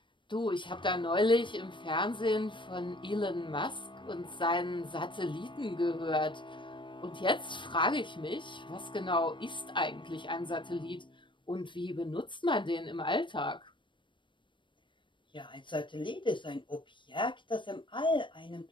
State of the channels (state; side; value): late; right; 0.24 ms